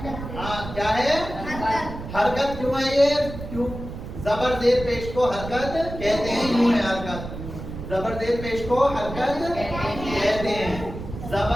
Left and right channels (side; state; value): right; noise; rumble, 9 dB below the sound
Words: हाँ क्या है? हरकत। क्यों है ये? क्यों? ज़बर ज़ेर पेश को हरकत कहते हैं, यूं है हरकत। ज़बर ज़ेर पेश को हरकत कहते हैं,